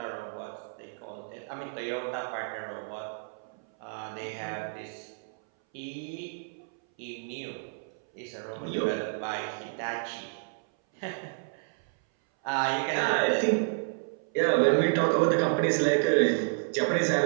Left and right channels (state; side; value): silent; left; 58 dB below the other